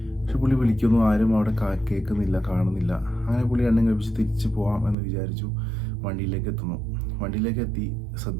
പക്ഷെ പുള്ളി വിളിക്കുന്നു, ആരും അവിടെ കേൾക്കുന്നില്ല, കാണുന്നില്ല. അങ്ങനെ പുള്ളി രണ്ടും കഴിപ്പിച്ച് തിരിച്ച് പോകാം എന്ന് വിചാരിച്ചു. വണ്ടിയിലേക്ക് എത്തി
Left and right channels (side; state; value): left; drops out; at 5.0 s